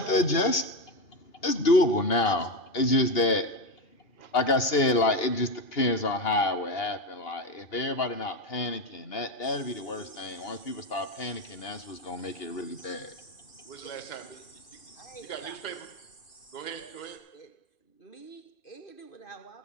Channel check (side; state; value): right; late; 2.8 ms